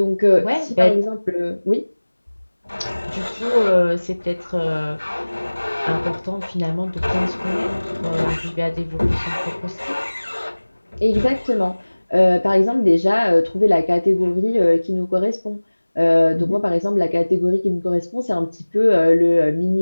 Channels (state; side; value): inverted; both; correlation -1.00